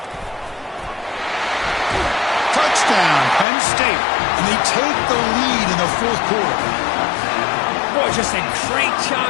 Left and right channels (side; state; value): right; drops out; at 3.5 s